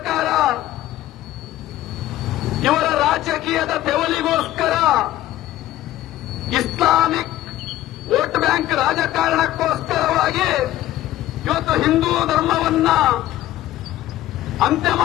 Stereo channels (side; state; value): right; quieter; 14.3 dB